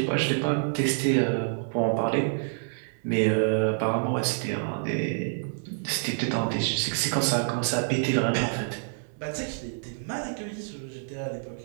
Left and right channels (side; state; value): left; silent; digital silence